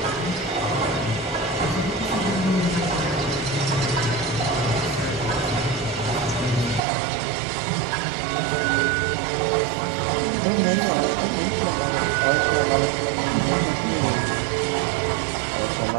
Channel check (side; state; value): left; drops out; at 6.8 s